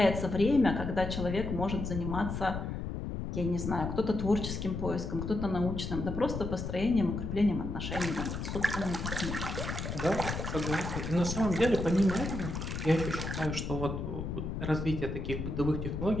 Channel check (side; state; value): left; noise; rumble, 4 dB below the sound